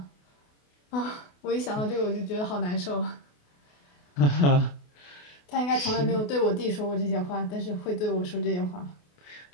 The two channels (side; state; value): right; late; 28 ms